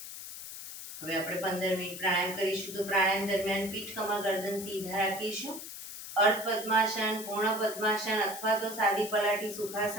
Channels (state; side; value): noise; left; hiss, 10 dB below the sound